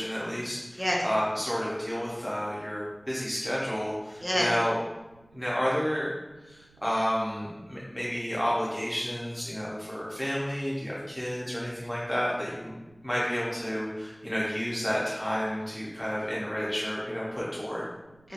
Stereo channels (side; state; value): right; noise; rumble, 29 dB below the sound